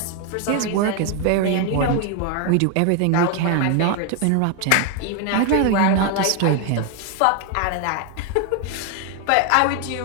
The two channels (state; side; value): different; both; correlation 0.01